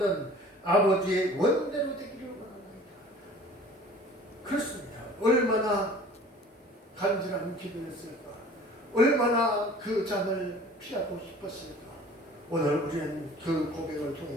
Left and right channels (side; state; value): both; normal; correlation 0.47